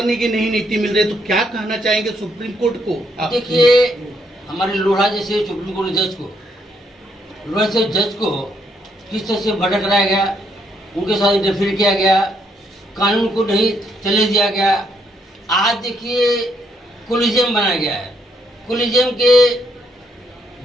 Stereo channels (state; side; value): normal; both; correlation 0.73